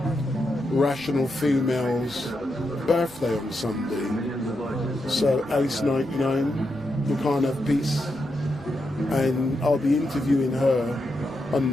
Rational Female's birthday on Sunday. So Alice 99, you can't have peace. And I'll be interviewing her on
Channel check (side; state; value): both; normal; correlation 0.84